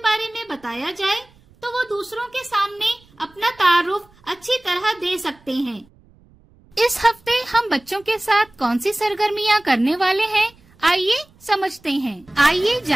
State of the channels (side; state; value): right; noise; rumble, 29 dB below the sound